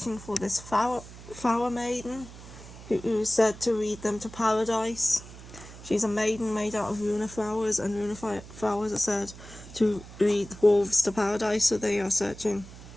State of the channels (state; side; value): noise; right; hum, 16 dB below the sound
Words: for this flower maiden who is said to lead them to paradise. She's a maiden made out of runa flowers, and runa flowers are said to lead wolves to paradise, so they are searching